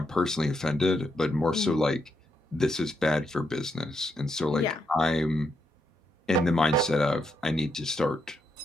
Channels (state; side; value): normal; both; correlation 0.80